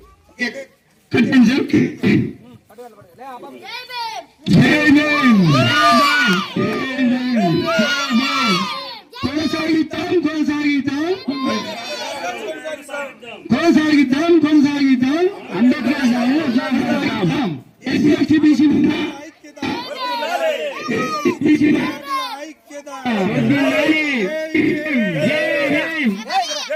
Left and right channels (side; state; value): both; identical; correlation 1.00